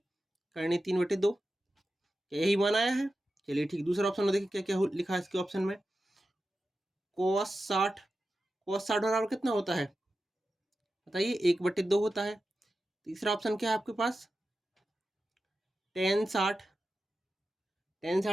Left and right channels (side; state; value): both; normal; correlation 0.92